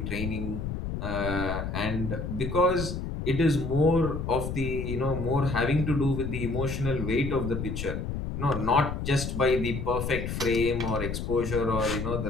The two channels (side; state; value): left; noise; rumble, 4 dB below the sound